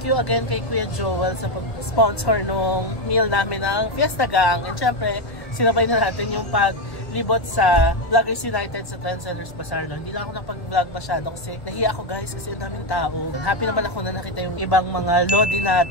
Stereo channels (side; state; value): right; late; 1.2 ms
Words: you again kay Kuya Joel sa pag-sponsor nung meal namin ng Fiesta Gang. And syempre, sinabay na natin yung paglibot sa Vloggers United sa Trendsellers Bazaar. No? Hindi na ako napag-vlog masyado kasi nahiya ako guys kasi ang daming tao. Happy naman ako na nakita yung ibang mga lodi